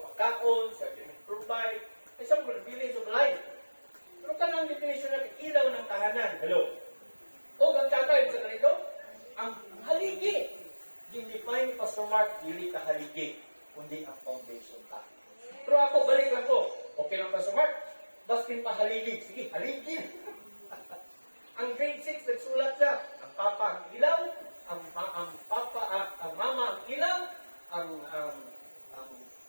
sa provide, ay sa mga bilins of life. Pero kanang definition niya, ilaw ng tahanan. Hello? O, ang kakay sa ganito, ang haligi. Define ni Pastor Mark, dili ka haligi, kundi ang foundation ka. Pero ako, balik lang ko. Okay lang, Pastor Mark? Bastin pa haligi. Sige, haligi. Ang grade 6, nagsulat siya. Ang papa ang ilaw, ang mama ang ilaw, ang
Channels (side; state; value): both; inverted; correlation -1.00